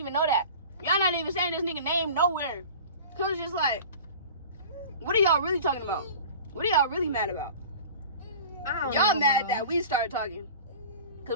know that. Y'all not even saying this nigga name nowhere. Cause it's just like, what are y'all really talking about? What are y'all really mad about? Y'all mad that we started talking.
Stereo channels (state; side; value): inverted; both; correlation -0.39